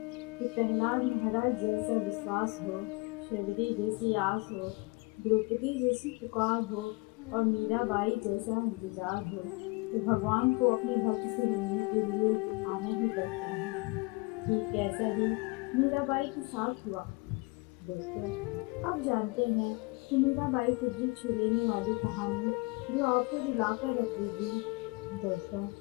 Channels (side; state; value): right; quieter; 26.7 dB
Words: कि प्रहलाद महाराज जैसा विश्वास हो, शबरी जैसी आस हो, द्रौपदी जैसी पुकार हो और मीराबाई जैसा इंतजार हो, तो भगवान को अपने भक्त से मिलने के लिए आना ही पड़ता है। ठीक ऐसा ही मीराबाई के साथ हुआ। दोस्तों, अब जानते हैं कि मीराबाई की दिल छू लेने वाली कहानी जो आपको रुलाकर रख देगी। दोस्तों,